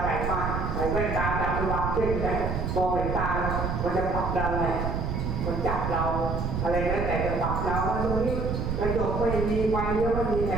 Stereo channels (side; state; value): right; noise; rumble, 2 dB below the sound